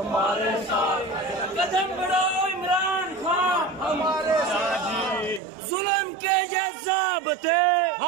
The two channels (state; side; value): drops out; left; at 5.4 s